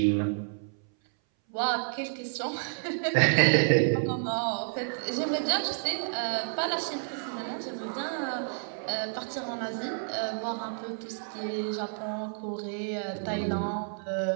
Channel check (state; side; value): silent; left; 58 dB below the other